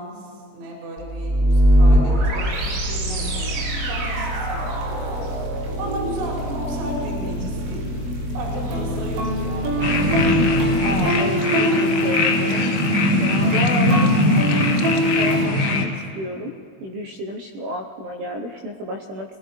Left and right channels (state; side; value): late; left; 21 ms